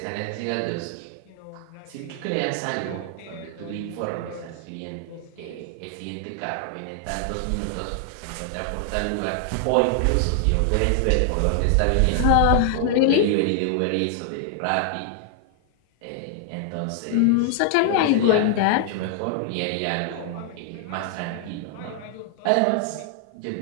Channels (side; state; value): both; different; correlation 0.00